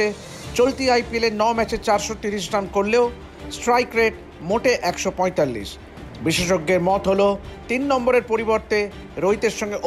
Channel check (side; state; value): both; identical; correlation 1.00